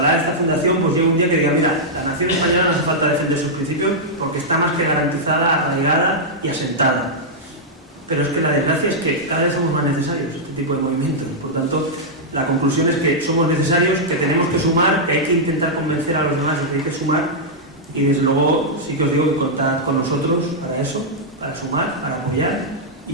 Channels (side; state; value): both; normal; correlation -0.07